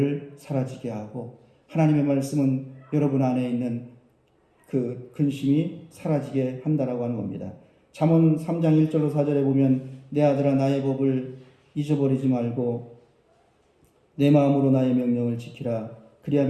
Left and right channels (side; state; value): both; identical; correlation 1.00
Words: 사라지게 하고 하나님의 말씀은 여러분 안에 있는 그 근심이 사라지게 한다라고 하는 겁니다. 잠언 3장 1절로 4절에 보면 내 아들아 나의 법을 잊어버리지 말고 내 마음으로 나의 명령을 지키라.